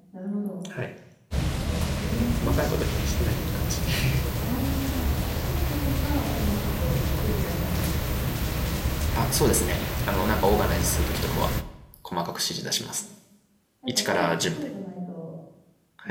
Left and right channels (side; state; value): both; identical; correlation 1.00